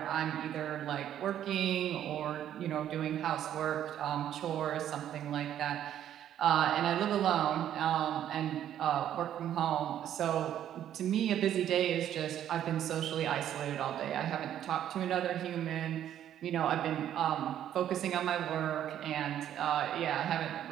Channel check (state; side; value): quieter; left; 10.8 dB